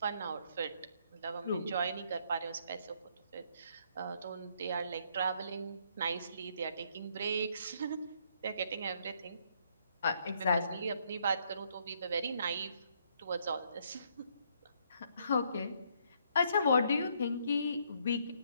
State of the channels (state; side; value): inverted; both; correlation -0.70